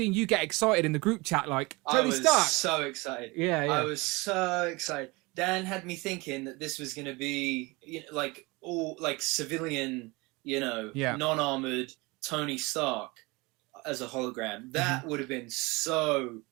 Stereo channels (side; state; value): left; quieter; 24.7 dB